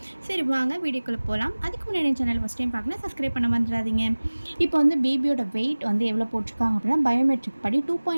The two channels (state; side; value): inverted; both; correlation -1.00